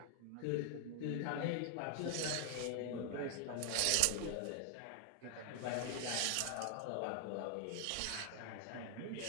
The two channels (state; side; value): different; both; correlation 0.00